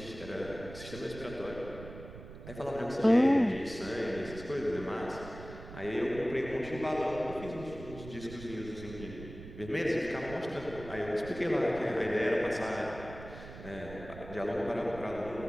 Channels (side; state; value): right; noise; rumble, 13 dB below the sound